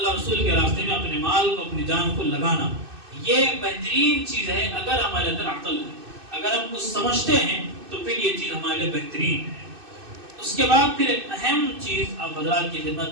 رسول کے راستے میں اپنے مال کو، اپنی جان کو لگانا. یہ بہترین چیز ہے اگر ہمارے اندر عقل ہے، اگر ہم کچھ سمجھتے ہیں تو پھر یہ چیز ہمارے لیے بہترین ہے. اس کے بعد پھر ایک اہم چیز آپ حضرات کی خدمت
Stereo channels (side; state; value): left; late; 2.6 ms